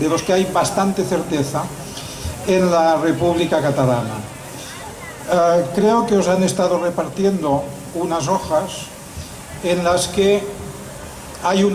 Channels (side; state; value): both; identical; correlation 1.00